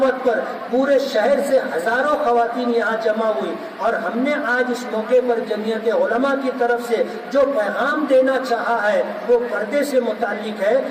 پر پورے شہر سے ہزاروں خواتین یہاں جمع ہوئی. اور ہم نے آج اس موقع پر جمعیت علماء کی طرف سے جو پیغام دینا چاہا ہے وہ پردے سے متعلق ہے.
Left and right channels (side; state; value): both; identical; correlation 1.00